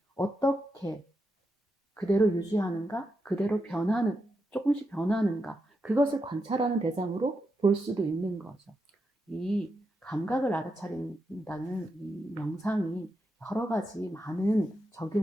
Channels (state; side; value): normal; both; correlation 0.85